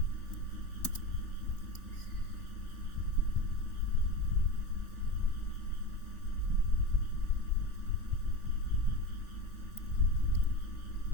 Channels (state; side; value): late; right; 3.4 ms